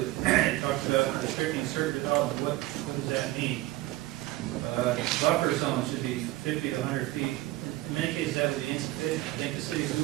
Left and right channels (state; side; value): quieter; left; 17.5 dB